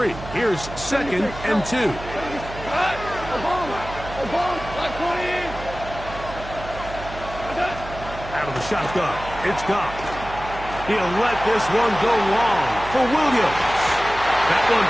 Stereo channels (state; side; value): noise; right; hum, 12 dB below the sound